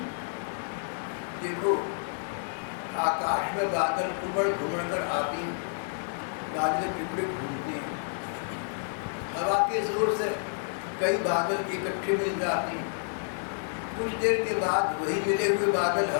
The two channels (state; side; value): silent; right; digital silence